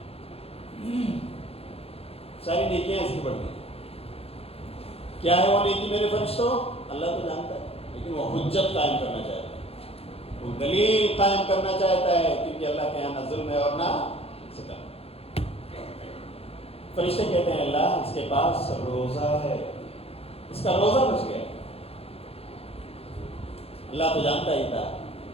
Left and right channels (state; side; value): late; right; 0.29 ms